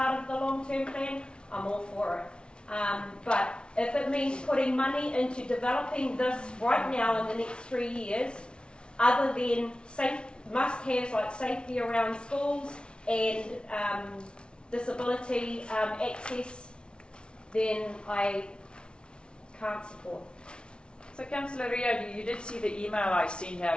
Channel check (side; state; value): right; late; 0.056 ms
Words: of the long-term plan, I'm all for it. But if it means putting money into developing this right now in the next 3 years, other than must-haves like safety around schools and disability access, then I can't support. So Councillor Rio, you did see the email I sent out